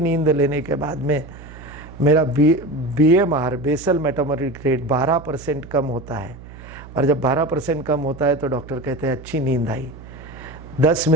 लेने के बाद में मेरा BMR, बेसल मेटाबॉलिक रेट 12% कम होता है। और जब 12% कम होता है तो डॉक्टर कहते हैं अच्छी नींद आई। 10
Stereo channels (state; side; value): noise; right; hum, 16 dB below the sound